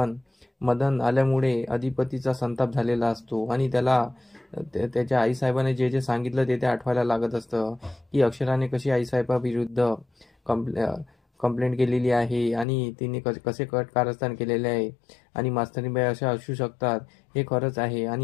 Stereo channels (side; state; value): right; drops out; at 12.7 s